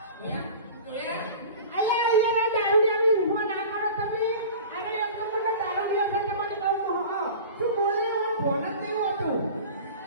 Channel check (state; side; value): inverted; both; correlation -0.38